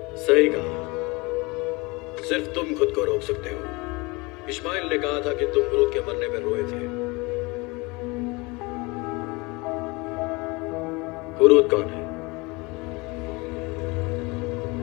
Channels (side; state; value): right; quieter; 25.6 dB